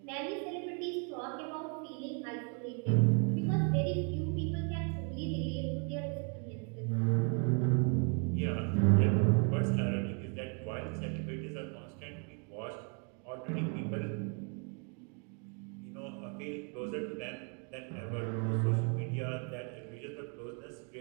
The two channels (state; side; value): quieter; left; 38.6 dB